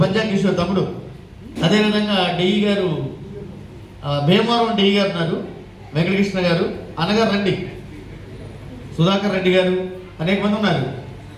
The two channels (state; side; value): identical; both; correlation 1.00